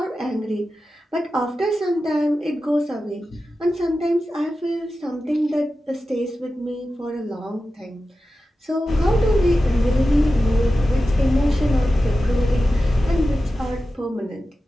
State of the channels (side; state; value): both; normal; correlation 0.93